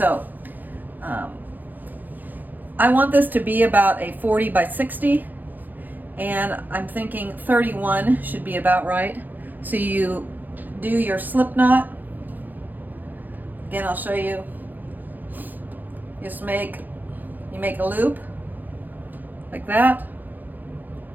I want this to be about a 40 by 60, and I'm thinking 31 should be about right. So you do your slip knot. Again, I'll show you. Just you make a loop like that,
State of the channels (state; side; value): late; left; 0.085 ms